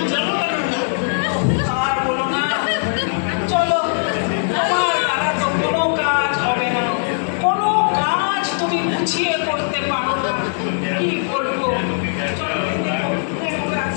জনগণনা। আর বলো না, চলো, তোমার দ্বারা তো কোনো কাজ হবে না, কোনো কাজ তুমি গুছিয়ে করতে পারো না। কি করবো? চলো,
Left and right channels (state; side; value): silent; right; digital silence